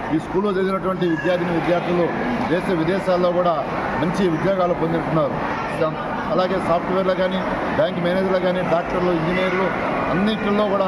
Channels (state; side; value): identical; both; correlation 1.00